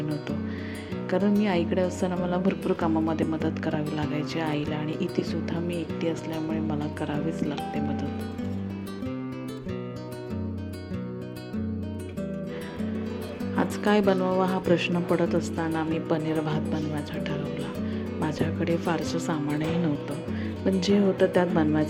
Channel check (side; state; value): both; identical; correlation 1.00